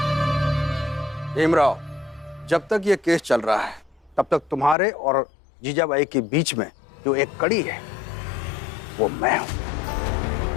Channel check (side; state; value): right; drops out; at 4.8 s